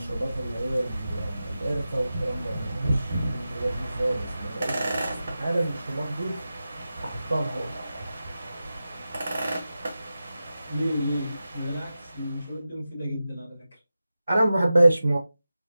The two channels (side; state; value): both; inverted; correlation -0.93